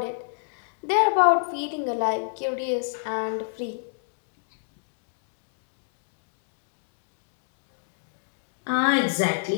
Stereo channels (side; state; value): right; silent; digital silence